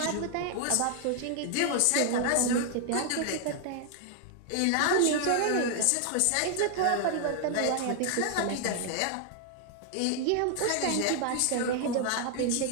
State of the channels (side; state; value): both; different; correlation 0.00